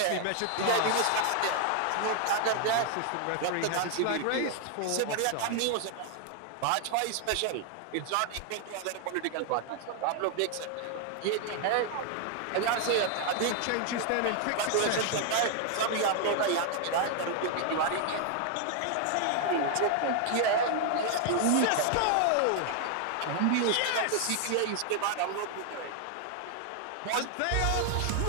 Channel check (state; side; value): different; both; correlation 0.00